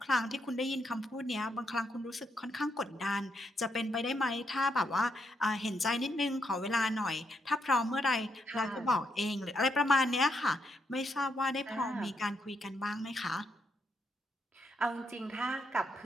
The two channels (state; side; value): normal; both; correlation 0.78